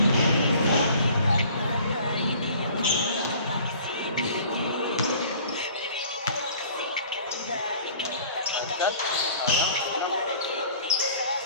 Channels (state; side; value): inverted; both; correlation -0.50